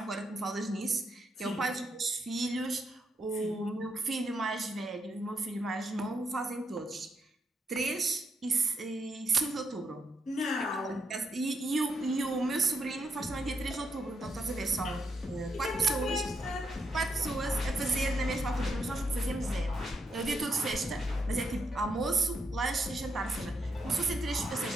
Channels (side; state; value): both; normal; correlation 0.80